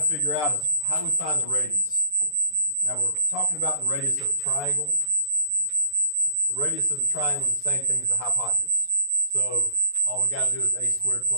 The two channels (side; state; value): left; late; 6.8 ms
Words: figure out is how do we find the radius? Now we're talking about the radius of a triangle. The radius of the triangle is the same thing as the hypotenuse. So all we got to do is a squared